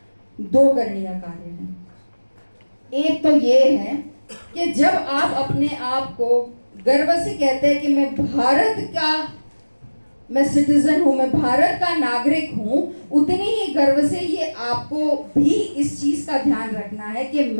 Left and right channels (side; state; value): both; inverted; correlation -1.00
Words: 2 करणीय कार्य हैं। एक तो ये है कि जब आप अपने आप को गर्व से कहते हैं कि मैं भारत का, मैं सिटीजन हूं, मैं भारत का नागरिक हूं, उतनी ही गर्व से ये आपको भी इस चीज का ध्यान रखना है कि